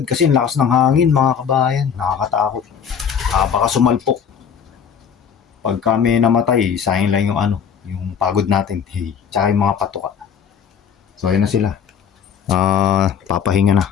kasi ang lakas ng hangin mga kabayan, nakakatakot. Baka sumalpok. Pag kami namatay, sayang lang yung ano, yung pagod natin, tsaka yung mga patuka. So ayun na sila. Papahinga na.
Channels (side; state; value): right; quieter; 7.4 dB